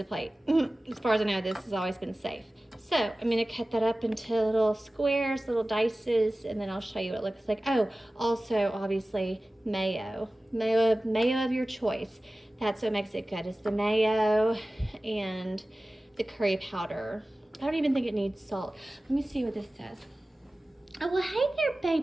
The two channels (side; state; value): both; normal; correlation 0.97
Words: plate. As far as I know, this has always been safe. So I'm gonna cut that up into little squares, little dices, and then I'll show you what it looks like. Oh, also obviously mayo of your choice. That's what makes it good, is the mayo. And the curry powder. I don't even think it needs salt. Let me see what this says. Oh, well, hey there,